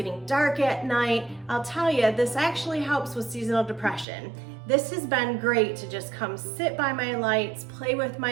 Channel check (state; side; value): drops out; left; at 4.0 s